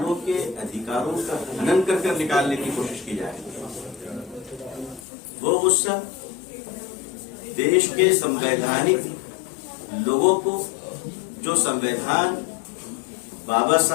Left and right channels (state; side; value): drops out; right; at 5.0 s